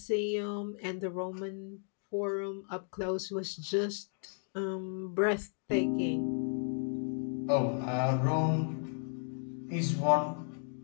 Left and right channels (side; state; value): right; silent; 55 dB below the other